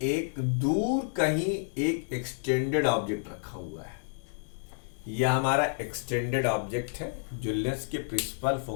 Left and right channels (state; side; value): silent; right; digital silence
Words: एक दूर कहीं एक एक्सटेंडेड ऑब्जेक्ट रखा हुआ है, यह हमारा एक्सटेंडेड ऑब्जेक्ट है जो लेंस के प्रिंसिपल